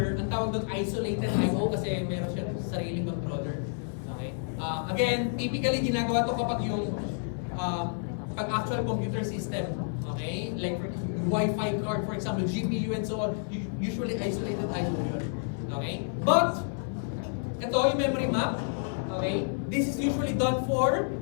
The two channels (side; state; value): right; silent; digital silence